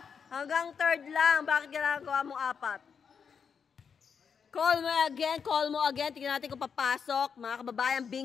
Hanggang third lang. Bakit ginagawa mo 4? Colmo again. Colmo again. Tingnan natin kung papasok. Mga kababayan,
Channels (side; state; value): right; quieter; 6.5 dB